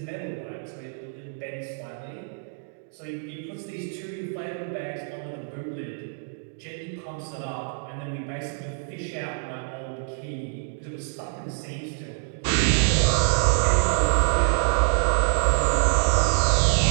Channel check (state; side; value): silent; left; digital silence